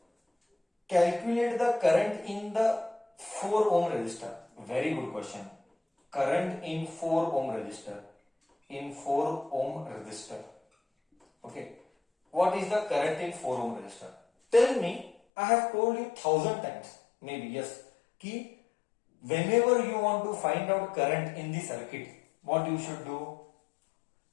Calculate the current in the 4 ohm resistor. Very good question. Current in 4 ohm resistor. In 4 ohm resistor. Okay. What is the current in 4 ohm resistor? Tell me, I have told you 1000 times, maybe yes, कि whenever you want to find out current in the circuit, what you should do?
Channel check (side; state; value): right; drops out; at 15.2 s